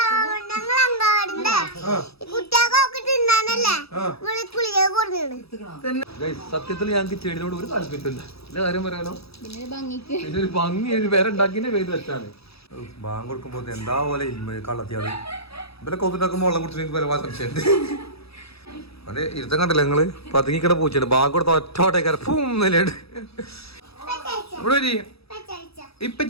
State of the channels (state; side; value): late; right; 0.77 ms